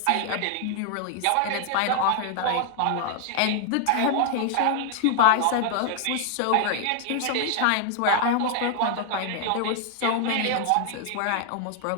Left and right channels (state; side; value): different; both; correlation 0.00